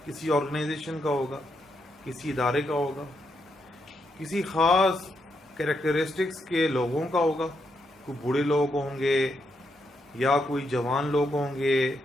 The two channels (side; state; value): both; normal; correlation 0.80